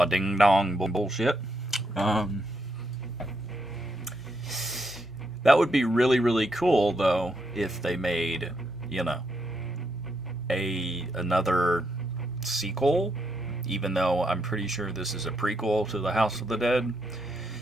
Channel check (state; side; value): normal; both; correlation 0.79